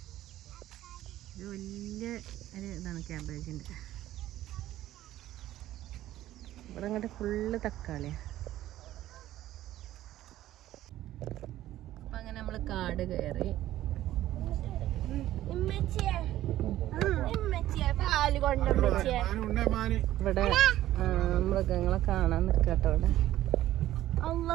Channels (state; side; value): quieter; left; 14.0 dB